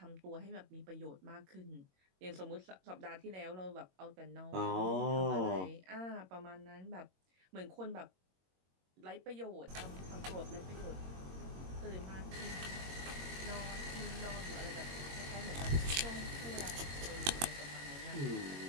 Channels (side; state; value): left; late; 22 ms